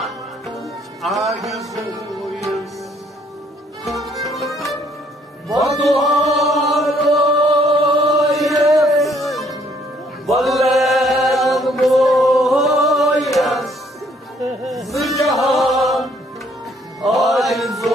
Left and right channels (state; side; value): normal; both; correlation 0.65